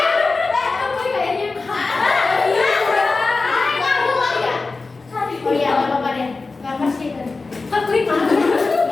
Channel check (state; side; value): quieter; right; 3.8 dB